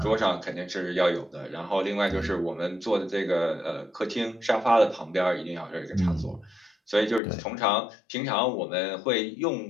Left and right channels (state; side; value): drops out; right; at 7.2 s